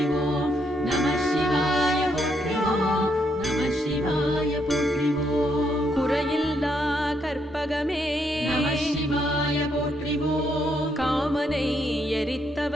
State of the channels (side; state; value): both; normal; correlation 0.75